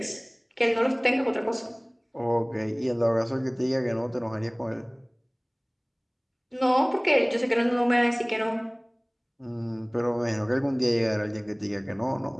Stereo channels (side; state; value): both; identical; correlation 1.00